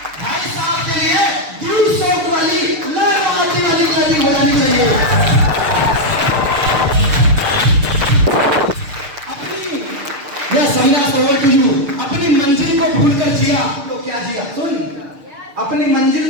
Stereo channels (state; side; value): late; left; 6.7 ms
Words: भाई साहब के लिए ड्यू सॉफ्ट वाली लहराने वाली ताली हो जानी चाहिए। अपनी यह संन्यास ओवर टू यू। अपनी मंजिल को भूलकर जिया तो क्या जिया? सुन, अपनी